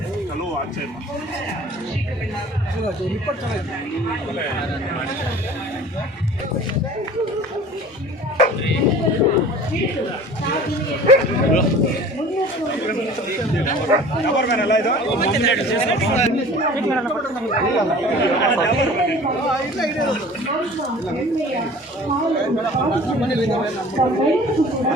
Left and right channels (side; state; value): both; normal; correlation 0.44